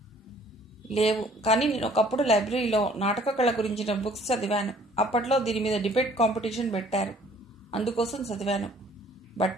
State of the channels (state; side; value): normal; both; correlation 0.57